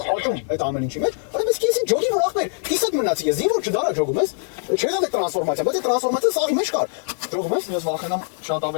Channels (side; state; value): right; silent; 59 dB below the other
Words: աճում այդ ամեն ինչի մեջ, արա ես կիսին ջոգի որ ախպեր, կիսատ մնացի ես, ինչ որ չդարա ջոգում ես, չէ՞ դա տրանսֆորմացիա, բայց այդ տրանսֆորմացիան սաղի մեջ կար։ Ջոգում ես, Ես վախենամ շատ